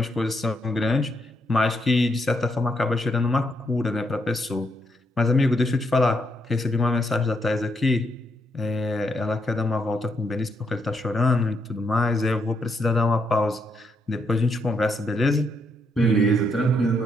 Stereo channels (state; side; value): normal; both; correlation 0.78